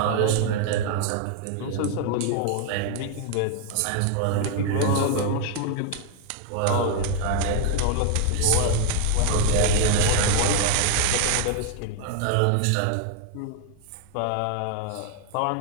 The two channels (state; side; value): different; both; correlation 0.01